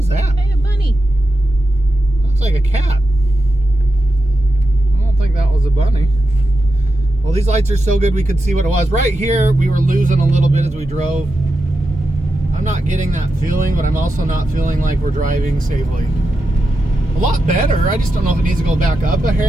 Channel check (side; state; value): both; normal; correlation 0.89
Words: that? Hey, a bunny. Looks like a cat. these lights are so good we could see what it was. Right here, we were losing a little bit as we drove. I'm not getting that feeling, but I'm also not feeling like we're driving safely. A lot better. I just don't know if it needs to go back up a